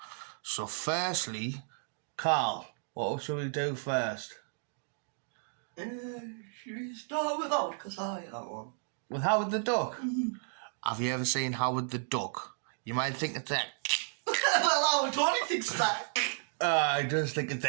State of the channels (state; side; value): silent; left; digital silence